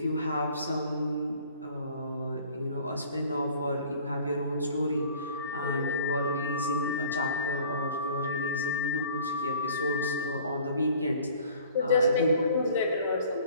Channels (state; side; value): inverted; both; correlation -0.49